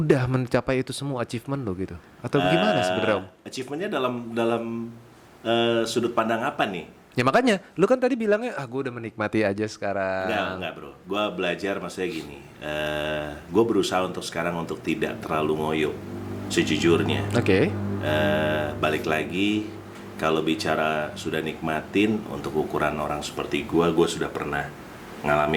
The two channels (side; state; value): both; identical; correlation 1.00